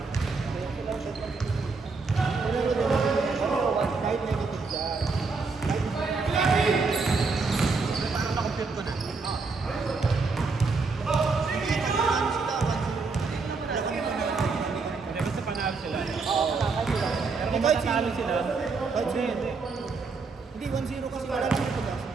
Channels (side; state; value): left; quieter; 4.3 dB